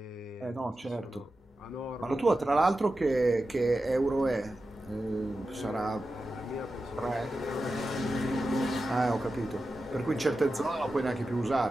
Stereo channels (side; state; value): both; normal; correlation 0.92